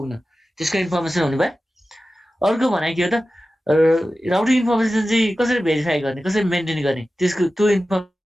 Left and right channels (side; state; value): both; normal; correlation 0.94